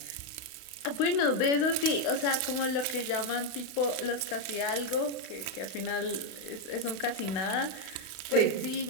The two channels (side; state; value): right; late; 32 ms